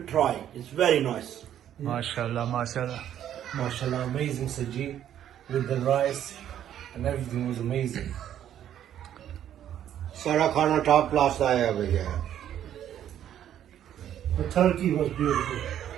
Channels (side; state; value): left; quieter; 10.6 dB